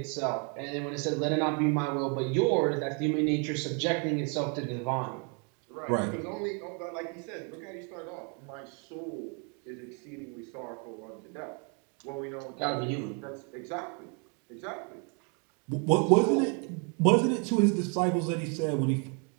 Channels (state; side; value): quieter; left; 36.8 dB